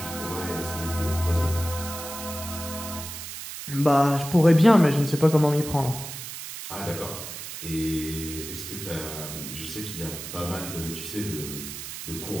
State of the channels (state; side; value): noise; right; hiss, 9 dB below the sound